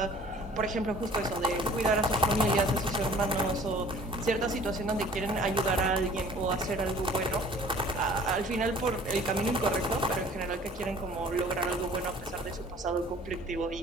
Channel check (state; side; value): normal; both; correlation 0.50